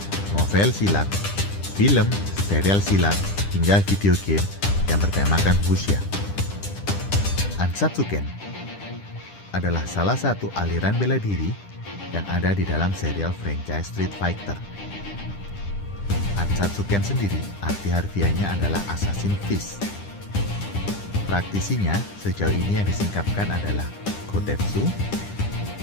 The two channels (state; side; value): late; right; 10 ms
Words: novel silat, film, serial silat, hingga video game yang bertemakan Wuxia. Ansatsuken adalah salah satu aliran bela diri yang ada di dalam serial franchise Street Fighter. Ansatsuken sendiri arti harfiahnya adalah Assassin Fist. Praktisinya sejauh ini yang disingkapkan adalah Gotetsu,